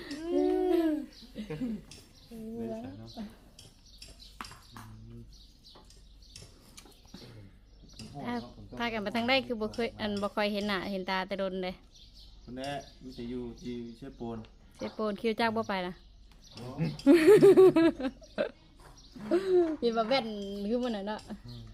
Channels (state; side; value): identical; both; correlation 1.00